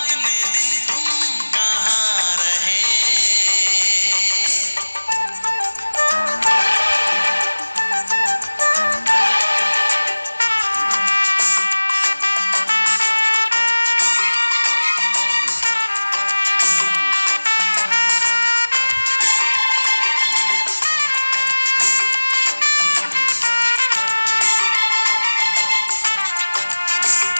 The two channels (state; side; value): inverted; both; correlation -1.00